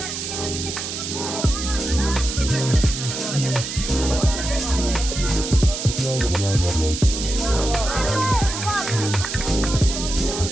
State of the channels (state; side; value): noise; right; hiss, 5 dB below the sound